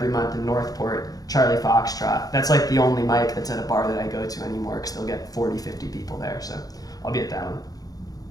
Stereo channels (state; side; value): late; right; 0.18 ms